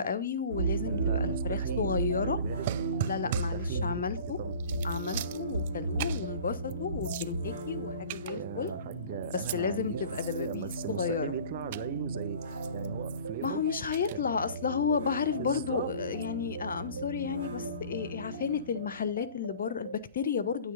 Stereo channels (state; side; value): inverted; both; correlation -0.45